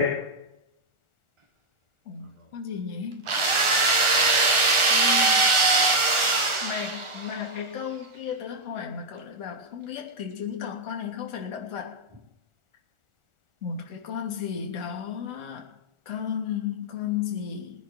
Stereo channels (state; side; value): late; left; 1.4 ms